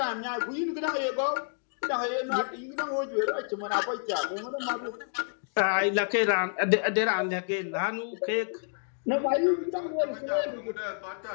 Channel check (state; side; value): silent; right; digital silence